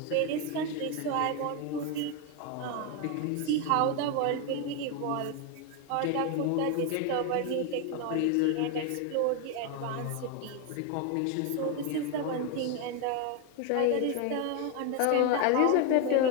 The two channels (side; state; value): both; different; correlation 0.01